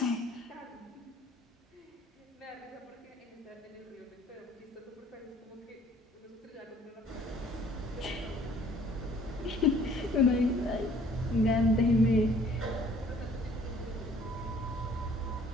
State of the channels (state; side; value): normal; both; correlation 0.56